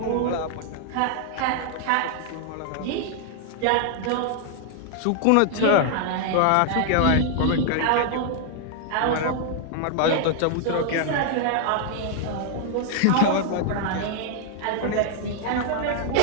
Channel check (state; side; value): different; both; correlation 0.00